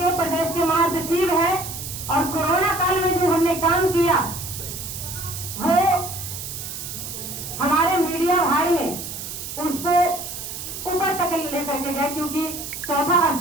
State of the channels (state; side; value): noise; right; hiss, 8 dB below the sound